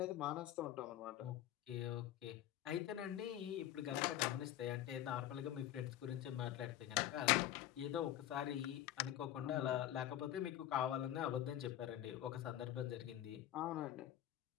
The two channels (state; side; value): quieter; right; 12.6 dB